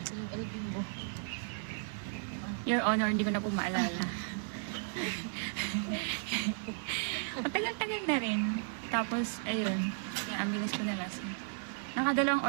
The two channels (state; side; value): silent; left; 55 dB below the other